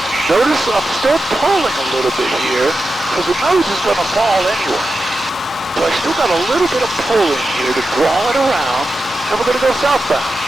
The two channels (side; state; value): both; normal; correlation 0.91